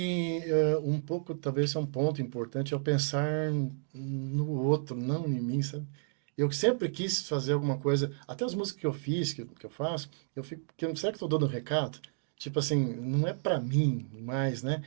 um pouco, talvez, é um ponto importante, é o pensar no outro, não em mim, sabe? Eu sempre quis fazer alguma coisa, até as músicas que eu fiz, que eu faço, eu fico, será que estou dando um recado? Tipo assim, não é para mim mais, né?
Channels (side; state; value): left; silent; digital silence